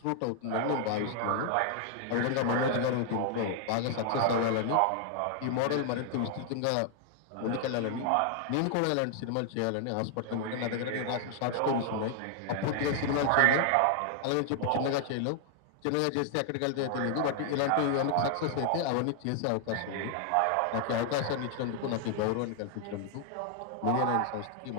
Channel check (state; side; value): different; both; correlation 0.00